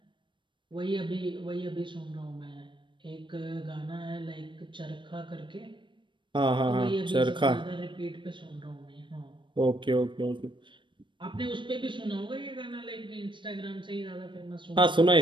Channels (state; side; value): late; left; 0.23 ms